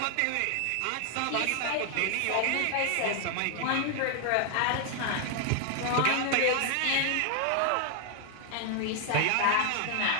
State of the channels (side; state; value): both; different; correlation 0.00